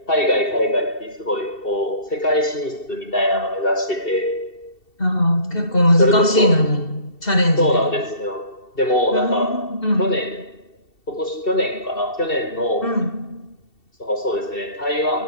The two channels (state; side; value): late; right; 2.7 ms